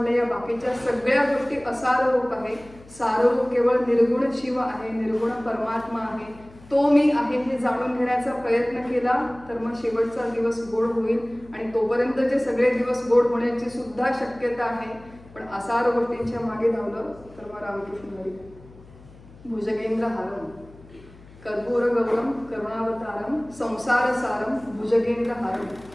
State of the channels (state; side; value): noise; left; hum, 22 dB below the sound